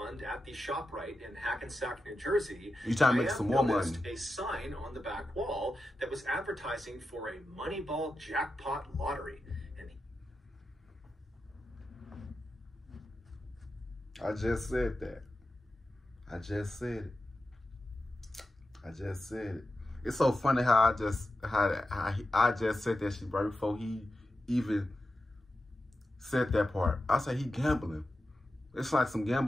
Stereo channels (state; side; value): normal; both; correlation 0.91